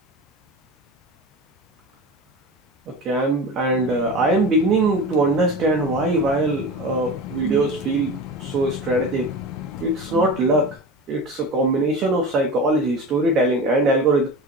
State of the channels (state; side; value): normal; both; correlation 0.31